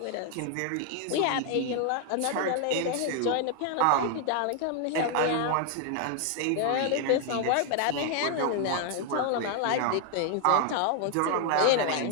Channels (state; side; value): different; both; correlation 0.00